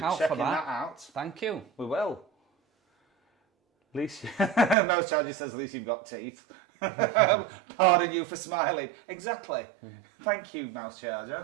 out checking for that. out. Thank you. We will. At least, Mouse Charger says, at least you've got teeth. Pardon you for smiling. Exactly. Thank you, Mouse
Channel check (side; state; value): left; drops out; at 4.8 s